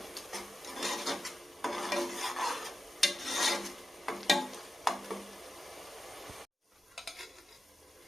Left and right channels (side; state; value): both; normal; correlation 0.91